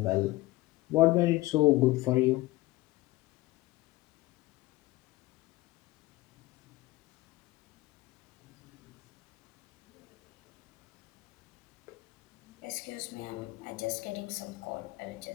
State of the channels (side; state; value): right; quieter; 19.4 dB